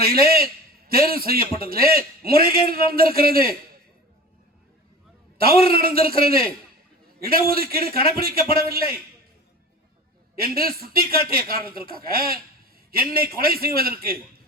தேர்வு செய்யப்பட்டதிலே முறைகேடு நடந்திருக்கிறது, தவறு நடந்திருக்கிறது, இடஒதுக்கீடு கடைபிடிக்கப்படவில்லை என்று சுட்டிக்காட்டிய காரணத்திற்காக என்னை கொலை செய்வதற்கு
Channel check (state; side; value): normal; both; correlation 0.36